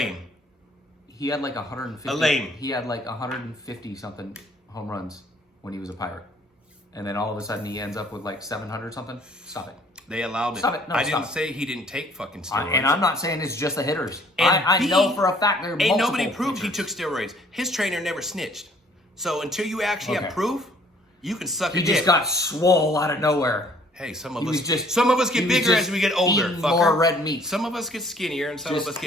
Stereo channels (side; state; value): both; normal; correlation 0.59